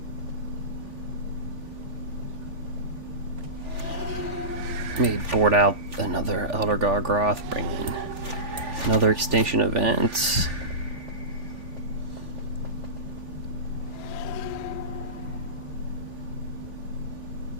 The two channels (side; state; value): left; late; 3.4 ms